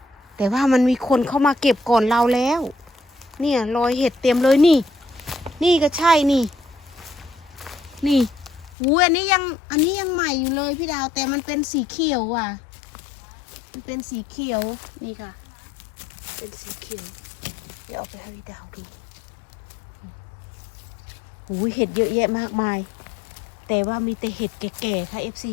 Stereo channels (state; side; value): drops out; right; at 8.8 s